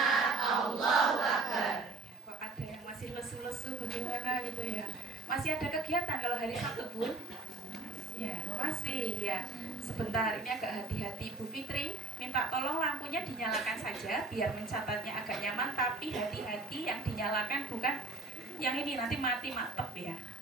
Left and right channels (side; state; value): left; quieter; 3.0 dB